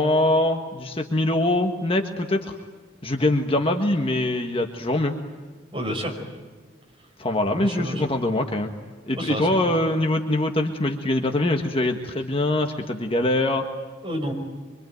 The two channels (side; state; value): both; normal; correlation 0.56